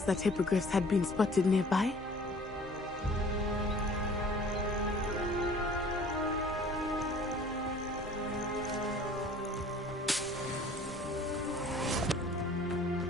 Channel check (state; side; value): normal; both; correlation 0.50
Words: that hippogriffs had been spotted nearby.